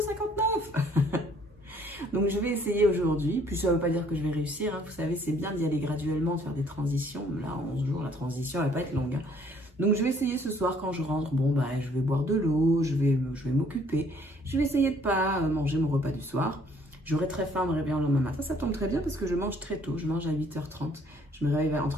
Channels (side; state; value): both; normal; correlation 0.61